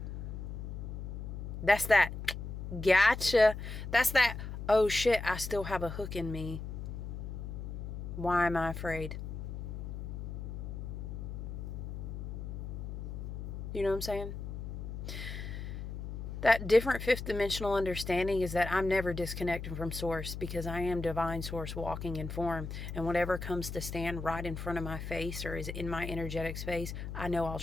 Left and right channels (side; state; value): left; noise; hum, 7 dB below the sound